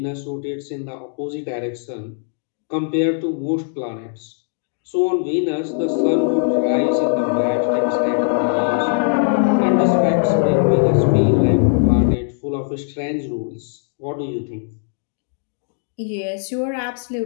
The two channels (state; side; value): silent; right; digital silence